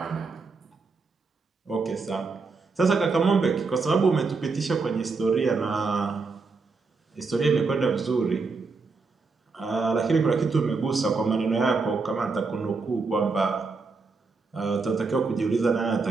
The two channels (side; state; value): left; quieter; 4.3 dB